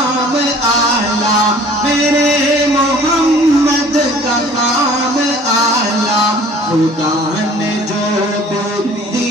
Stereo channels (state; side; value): normal; both; correlation 0.50